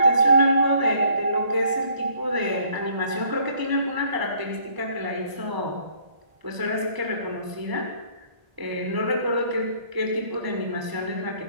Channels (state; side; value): late; left; 1.0 ms